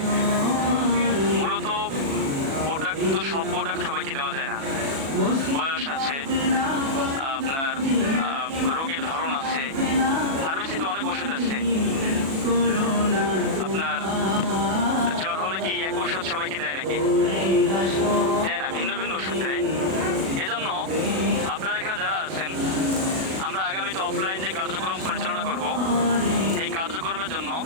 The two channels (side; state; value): left; late; 37 ms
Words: মূলত প্রোডাক্ট তো সব প্রোডাক্ট সবাইকে দেওয়া যায় না, বয়স আছে, আপনার রোগের ধরন আছে, ফার্মেসিতে অনেক ওষুধ আছে। আপনার জ্বর হলে কি এক ওষুধ সবাইকে দেয় নাকি? দেয় না, ভিন্ন ভিন্ন ওষুধ দেয়। এজন্য আপনারা এখানে যারা আছেন, আমরা আগামীতে অফলাইন যে কার্যক্রম পরিচালনা করব, এই কার্যক্রমের জন্য